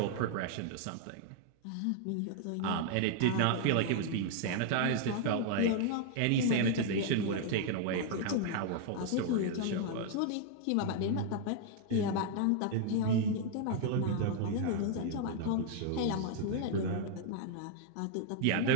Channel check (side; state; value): both; different; correlation 0.00